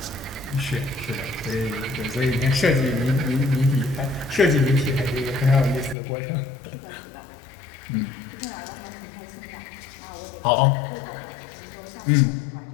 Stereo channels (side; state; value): right; drops out; at 6.0 s